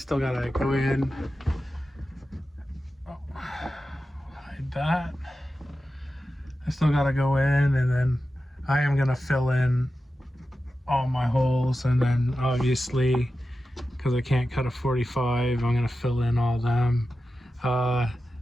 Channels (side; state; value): both; normal; correlation 0.92